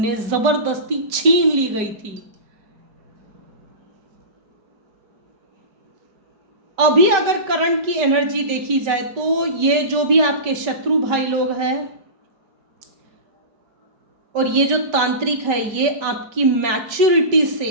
जबरदस्ती छीन ली गई थी। अभी अगर करंट की एनर्जी देखी जाए तो ये जो भी आपके शत्रु भाई लोग हैं, और ये जो तांत्रिक है ये आपकी मैच्योरिटी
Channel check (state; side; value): late; left; 5.1 ms